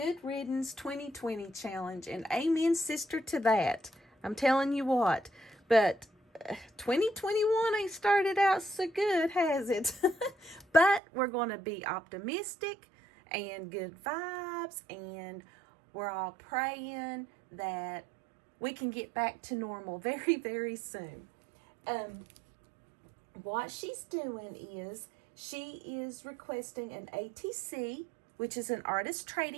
Riddance 2020 challenge, and amen sister to that. I'm telling you what, but 2021 ain't started out so good, has it? But we're going to be optimistic and good vibes, and we're all praying that we can get back to normal very, very soon. What she's doing is she is requesting an ATC, which is an artist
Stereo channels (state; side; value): drops out; left; at 11.0 s